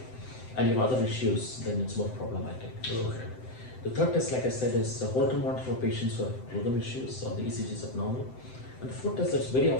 and you have other issues, then it's more problematic. Okay. The third test, like I said, is a Holter monitor for patients who have rhythm issues or the ECG is abnormal. And the fourth test that's very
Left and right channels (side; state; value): right; late; 7.8 ms